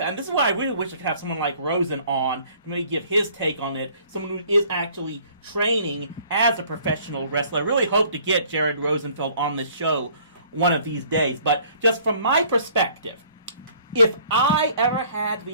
and this is why I really wish I could have someone like Rosen on to maybe give his take on it, someone who is actually training as a professional wrestler. I really hope to get Jared Rosenfeld on the show one of these days. But just from my perspective, if I ever had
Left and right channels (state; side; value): inverted; both; correlation -0.57